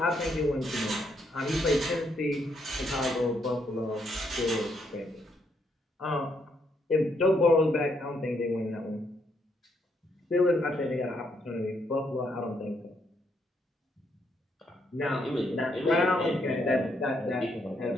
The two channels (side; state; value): both; normal; correlation 0.75